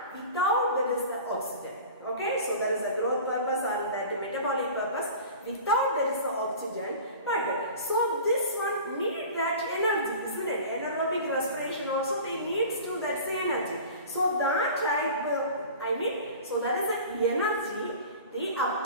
without there is the oxygen. Okay, so there is a growth purpose and that metabolic purpose. Without there is the oxygen, but so this one need that energy, isn't it? Anaerobic respiration also they needs to that energy. So that type, so that is the energy they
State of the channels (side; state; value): both; inverted; correlation -0.38